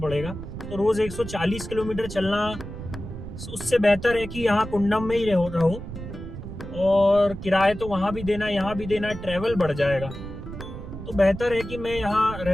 तो रोज 140 किलोमीटर चलना, उससे बेहतर है कि यहाँ कुंडम में ही रहो। और किराए तो वहां भी देना, यहाँ भी देना, ट्रेवल बढ़ जाएगा, तो बेहतर है कि मैं यहाँ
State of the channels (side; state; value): right; noise; rumble, 10 dB below the sound